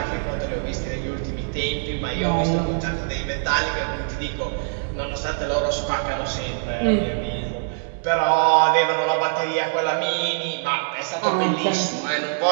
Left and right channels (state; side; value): silent; left; digital silence